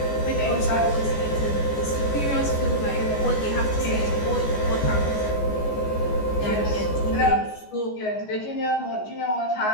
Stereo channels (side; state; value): right; late; 14 ms